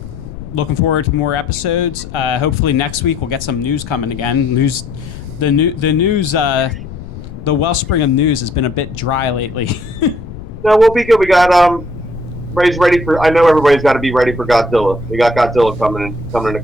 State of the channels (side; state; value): left; noise; rumble, 12 dB below the sound